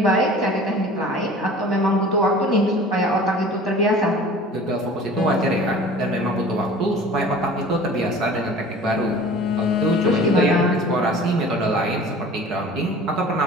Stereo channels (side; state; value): both; normal; correlation 0.43